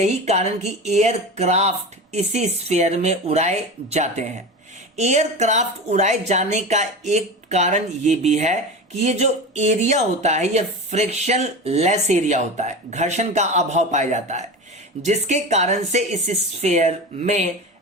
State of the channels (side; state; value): both; normal; correlation 0.28